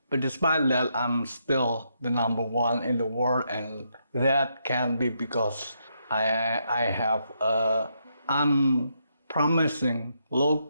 but despite that I'm still the number one in the world, and that can be because I have a unpromising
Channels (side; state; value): both; inverted; correlation -0.79